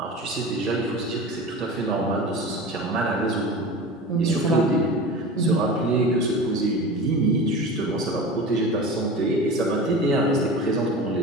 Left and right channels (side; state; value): both; normal; correlation 0.33